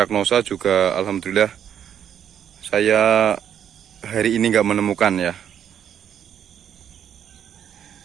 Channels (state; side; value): quieter; left; 9.2 dB